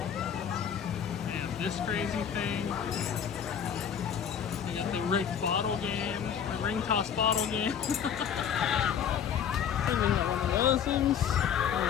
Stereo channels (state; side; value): quieter; right; 8.2 dB